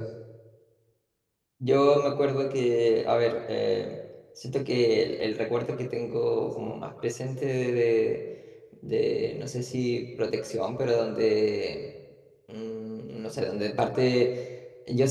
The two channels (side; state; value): both; identical; correlation 1.00